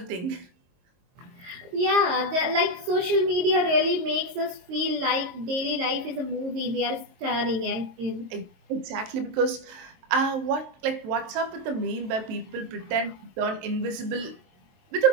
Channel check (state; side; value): late; left; 22 ms